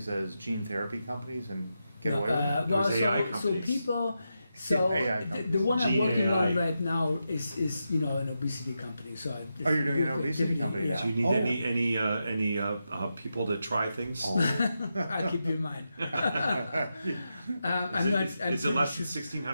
as gene therapy companies and get away with it? Well, There's AI so companies. people, so AI the one I'm Gene working AI. on right now is an obesity company. So Oh, you're doing an obesity company now? Do you need Oh. any people to try things? Oh. I'll keep you in mind. Is it less than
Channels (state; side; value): inverted; both; correlation -0.87